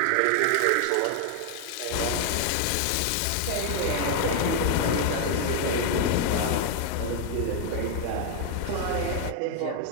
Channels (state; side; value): different; both; correlation 0.00